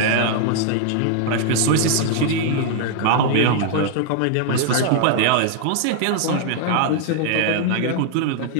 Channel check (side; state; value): both; different; correlation -0.01